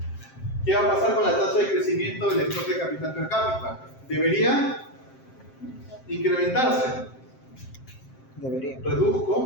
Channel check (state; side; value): late; right; 7.6 ms